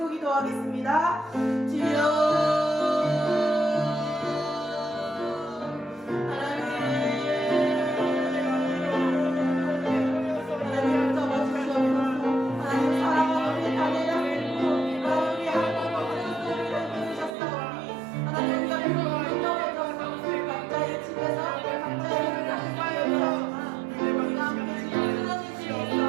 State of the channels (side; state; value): left; drops out; at 17.4 s